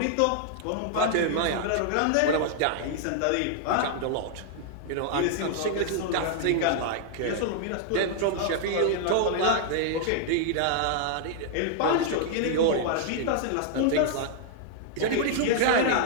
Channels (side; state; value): both; different; correlation -0.01